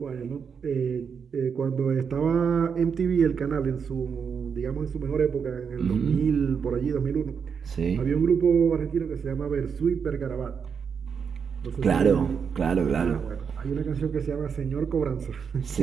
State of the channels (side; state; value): left; quieter; 6.5 dB